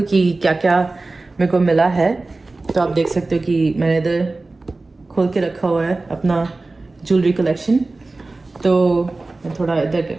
कि क्या क्या मेरे को मिला है। तो आप देख सकते हो कि मैंने इधर खोल के रखा हुआ है अपना ज्वेलरी कलेक्शन, तो मैं थोड़ा इधर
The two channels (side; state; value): left; quieter; 3.3 dB